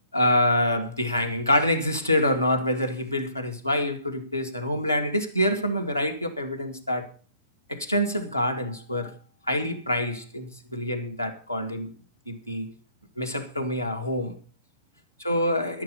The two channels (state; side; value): inverted; both; correlation -0.64